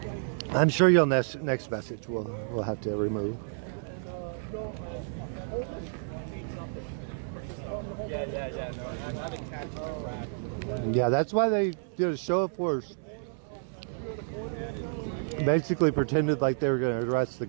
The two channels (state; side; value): silent; left; 58 dB below the other